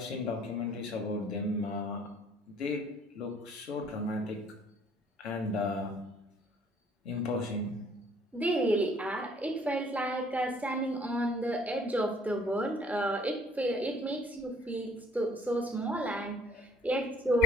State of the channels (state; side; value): normal; both; correlation 0.59